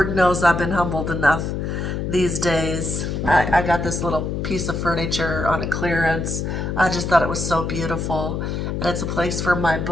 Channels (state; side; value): noise; left; hum, 2 dB below the sound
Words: knows I've been humbled enough these days. I got this little piece of furniture on a clearance. I just thought it was so beautiful. And it's a place for my